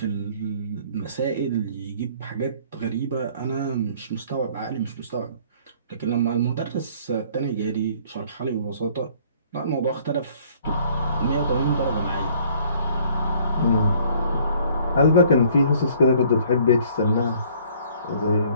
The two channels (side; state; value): both; inverted; correlation -0.57